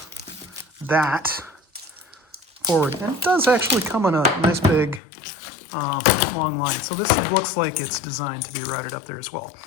that forward. And it does actually come on a nice big long line. So this looks like it's designed to be routed up there as well.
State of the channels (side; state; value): right; drops out; at 5.0 s